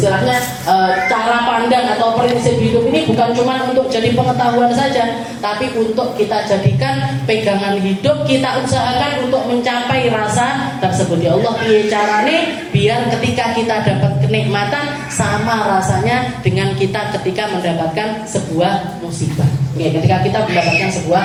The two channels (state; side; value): identical; both; correlation 1.00